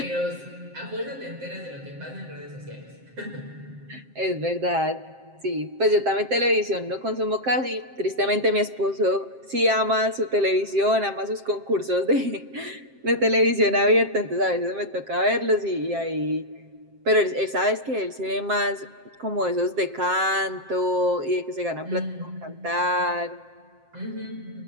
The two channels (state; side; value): late; left; 7.6 ms